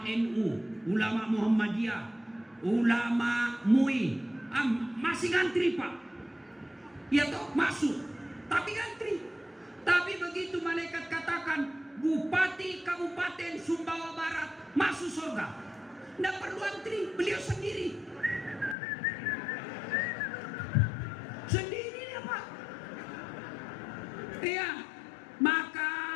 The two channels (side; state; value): right; drops out; at 18.8 s